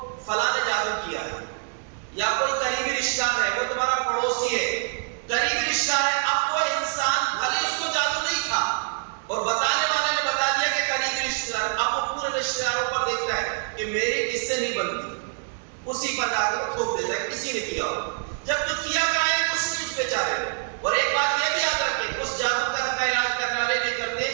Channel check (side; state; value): left; silent; 61 dB below the other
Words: فلاں نے جادو کیا ہے، یا کوئی قریبی رشتہ ہے، وہ تمہارا پڑوسی ہے، قریبی رشتہ ہے، اب وہ انسان بھلے اس کو جادو نہیں تھا اور بتانے والے نے بتا دیا کہ قریبی رشتہ دار، اب وہ پورے رشتہ داروں پر دیکھتا ہے کہ میری کس سے نہیں بنتی، اسی پر جا کر وہ تھوپ دیتا ہے کسی نے کیا ہو، جب تو کیا کرائے کچھ نہیں اس بیچارے کو۔ اور ایک بات یہ بھی یاد رکھیں، اس جادو کا علاج کرنے والے بھی کرتے